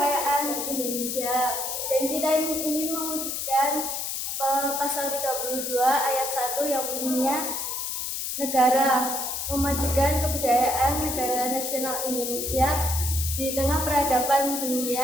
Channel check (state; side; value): noise; left; hiss, 3 dB below the sound